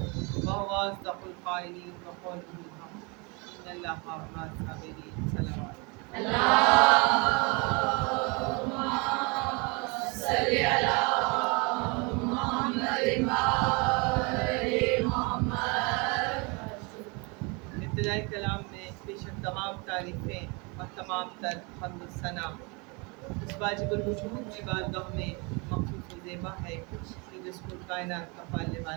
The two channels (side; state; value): left; quieter; 29.9 dB